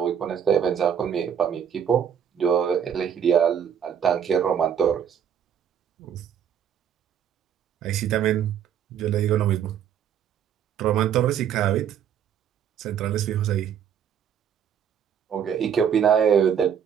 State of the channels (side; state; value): left; quieter; 8.5 dB